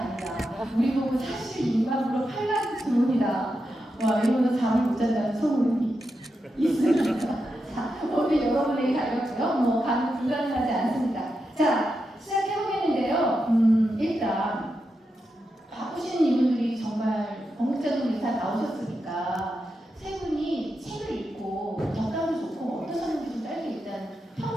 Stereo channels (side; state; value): both; normal; correlation 0.87